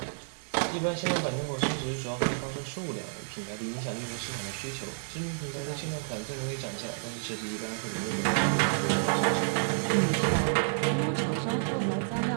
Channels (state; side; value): silent; left; digital silence